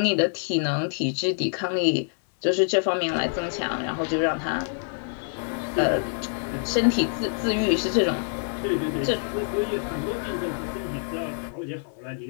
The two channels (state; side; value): silent; right; digital silence